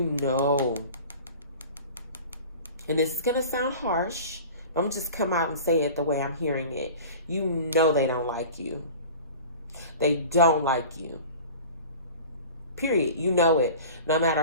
this is going to sound harsh, but I'm just come out and say it the way I'm hearing it. You know they don't like you. They don't like you. Period. You know it. No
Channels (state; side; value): inverted; both; correlation -0.39